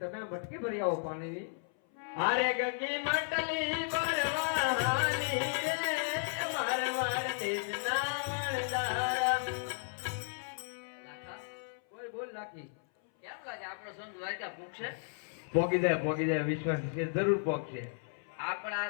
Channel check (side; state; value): right; silent; 55 dB below the other